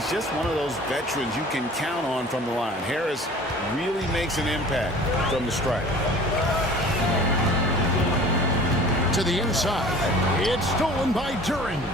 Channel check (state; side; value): normal; both; correlation 0.45